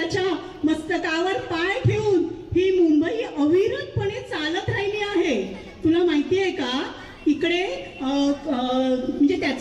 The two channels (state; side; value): identical; both; correlation 1.00